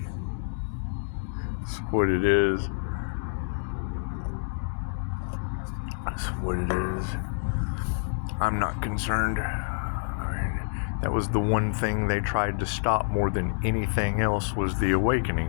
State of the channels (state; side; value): silent; right; digital silence